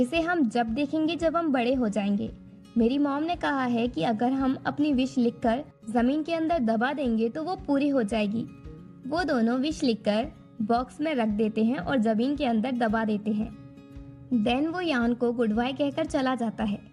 हम जब देखेंगे जब हम बड़े हो जाएंगे। मेरी मॉम ने कहा है कि अगर हम अपनी विश लिखकर जमीन के अंदर दबा देंगे तो वो पूरी हो जाएगी। वो दोनों विश लिखकर बॉक्स में रख देते हैं और जमीन के अंदर दबा देते हैं। देन वो यान को गुड बाय कहकर चला जाता है।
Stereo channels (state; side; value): identical; both; correlation 1.00